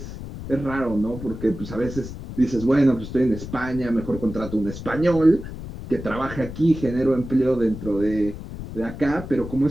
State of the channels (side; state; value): left; noise; rumble, 10 dB below the sound